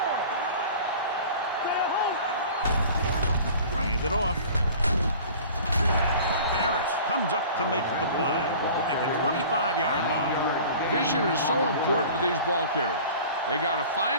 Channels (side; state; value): both; inverted; correlation -0.43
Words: Stay home. Hand it off. Harris comes up to make the play at the 25-yard line. Vision is so important to these ball carriers. They got to